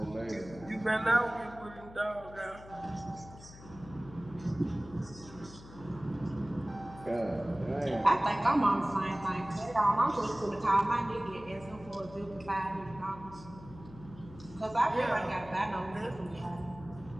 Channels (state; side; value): noise; left; hum, 18 dB below the sound